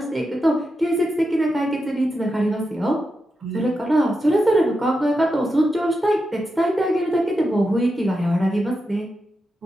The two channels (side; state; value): both; normal; correlation 0.88